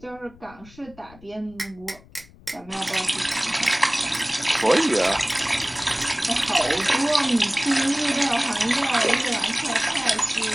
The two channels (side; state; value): left; noise; rumble, 24 dB below the sound